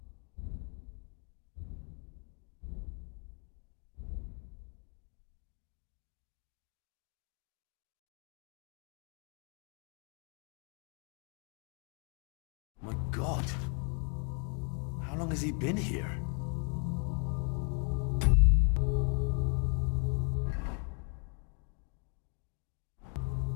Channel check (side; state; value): right; quieter; 37.2 dB